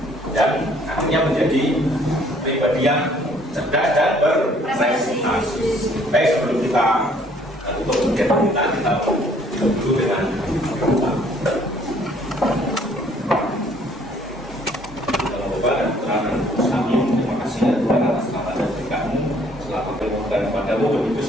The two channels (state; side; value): normal; both; correlation 0.61